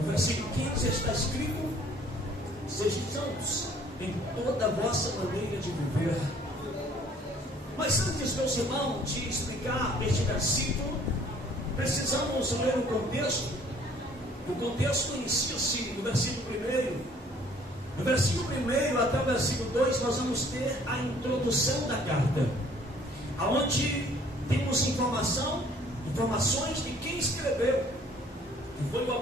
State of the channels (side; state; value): both; normal; correlation 0.57